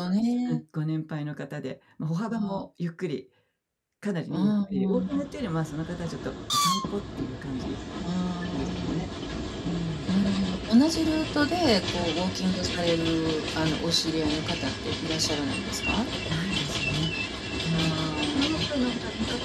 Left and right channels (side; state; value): both; identical; correlation 1.00